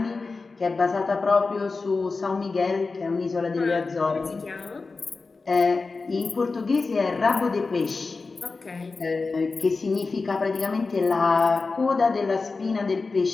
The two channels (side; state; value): right; quieter; 4.0 dB